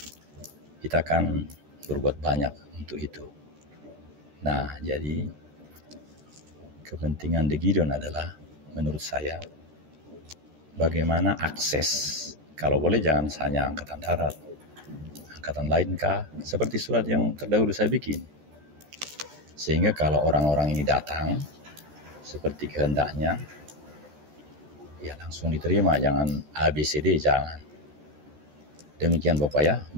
kita akan berbuat banyak untuk itu. Nah, jadi kepentingan The Gideon adalah menurut saya bagaimana akses, kalau boleh jangan hanya angkatan darat, angkatan lain kah, seperti surat yang terdahulu saya bikin. Sehingga kalau orang-orang ini datang seperti kehendaknya, ya langsung diterima, jangan ABCD, jangan. Demikian Bapak ya,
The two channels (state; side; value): late; left; 14 ms